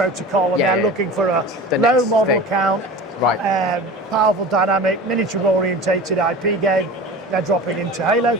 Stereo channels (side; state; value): both; normal; correlation 0.35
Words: and Yeah, they're yeah. looking for a The low next model thing. count, Right. powerful, dynamic, miniature orientated IP game. They're dropping into Halo.